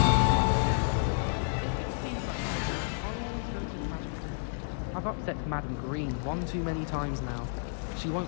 If it seeds I'm after, I'll always go to the magic loop. I've upset Madam Green one too many times now. She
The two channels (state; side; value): silent; right; digital silence